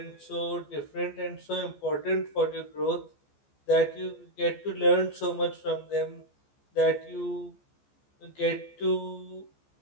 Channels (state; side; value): late; right; 14 ms